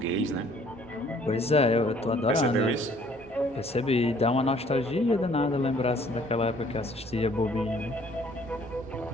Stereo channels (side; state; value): both; normal; correlation 0.59